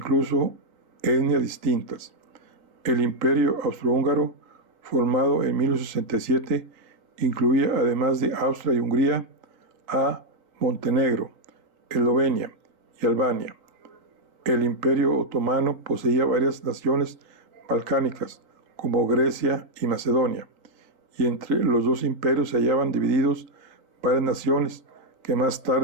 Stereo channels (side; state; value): left; late; 3.8 ms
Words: etnias distintas. El imperio austrohúngaro, formado en 1867, incluía, además de Austria y Hungría, a Montenegro, Eslovenia y Albania. El imperio otomano poseía varias naciones balcánicas, como Grecia y Macedonia, y entre los dos imperios se hallaban divididos varias naciones que más